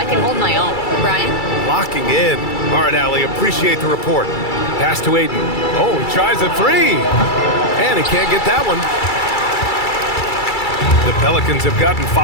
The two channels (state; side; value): late; right; 2.3 ms